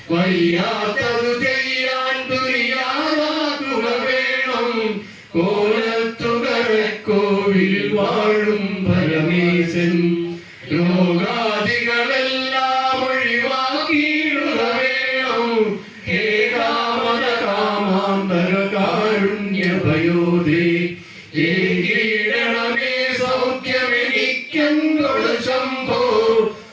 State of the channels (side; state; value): both; identical; correlation 1.00